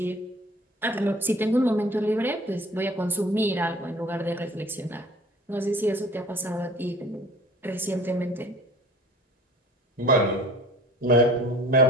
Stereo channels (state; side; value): normal; both; correlation 0.47